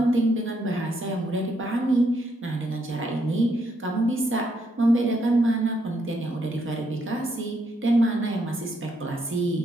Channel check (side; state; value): both; normal; correlation 0.75